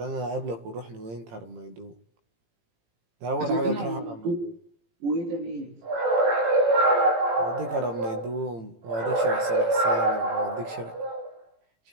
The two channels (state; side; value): late; left; 18 ms